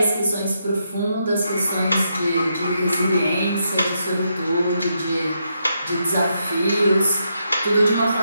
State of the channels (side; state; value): both; inverted; correlation -0.81